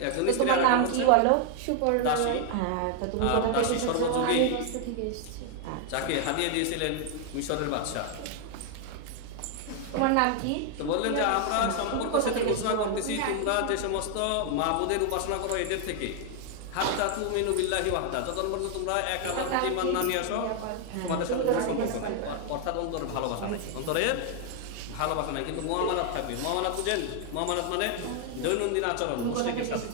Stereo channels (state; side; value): different; both; correlation 0.00